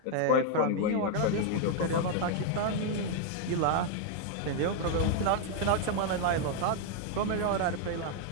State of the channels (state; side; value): different; both; correlation 0.00